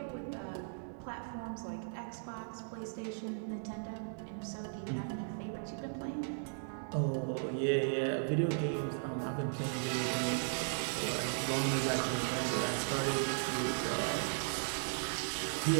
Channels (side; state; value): left; silent; 53 dB below the other